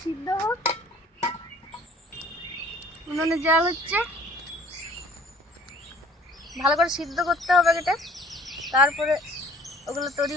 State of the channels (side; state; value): both; normal; correlation 0.53